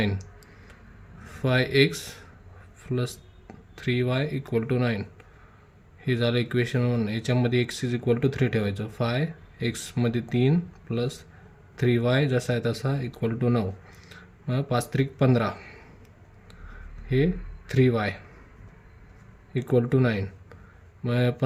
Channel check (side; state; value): both; identical; correlation 1.00